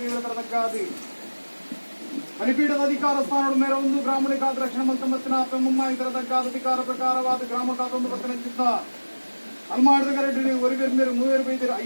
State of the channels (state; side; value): inverted; both; correlation -1.00